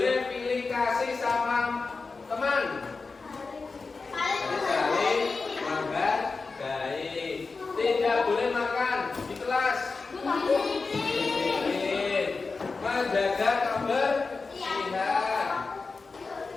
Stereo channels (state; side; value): quieter; right; 4.2 dB